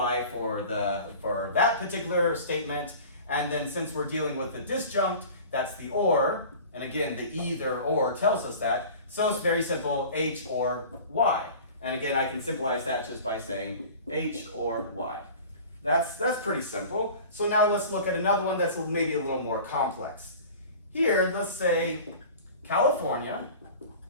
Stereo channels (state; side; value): inverted; both; correlation -0.40